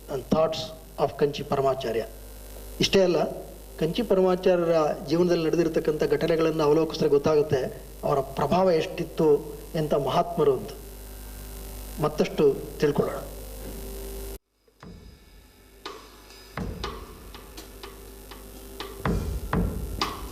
and thoughts of Kanchi Paramacharya. ಇಷ್ಟೇ ಅಲ್ಲ, ಕಂಚಿ ಪರಮಾಚಾರ್ಯರ ಜೀವನದಲ್ಲಿ ನಡೆದಿರ್ತಕ್ಕಂಥ ಘಟನೆಗಳನ್ನು ಅವಲೋಕಿಸಿದ್ರೆ ಗೊತ್ತಾಗುತ್ತೆ ಅವರ ಪ್ರಭಾವ ಎಷ್ಟಿತ್ತು, ಎಂಥ ಮಹಾತ್ಮರು ಅಂತ ಮತ್ತಷ್ಟು ತಿಳ್ಕೊಳ್ಳೋಣ.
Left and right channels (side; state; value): both; identical; correlation 1.00